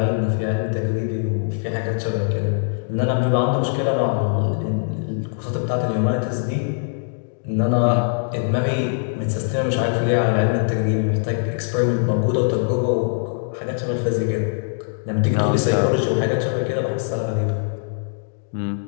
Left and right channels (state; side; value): silent; right; digital silence